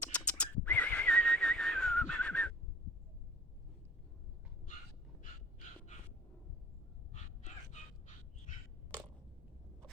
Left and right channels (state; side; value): normal; both; correlation 0.50